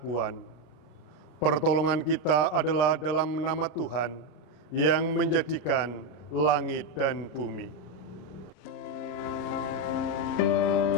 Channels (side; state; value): right; late; 33 ms